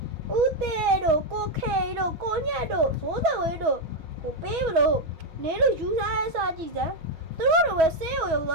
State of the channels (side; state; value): left; late; 6.2 ms